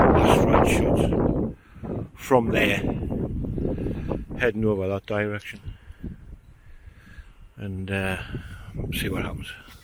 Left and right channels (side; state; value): both; identical; correlation 1.00